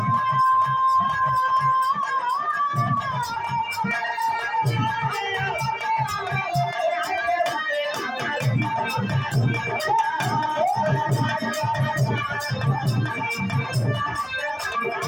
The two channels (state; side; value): identical; both; correlation 1.00